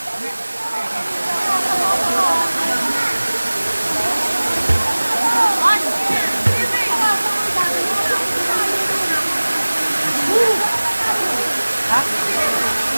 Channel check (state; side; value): inverted; both; correlation -1.00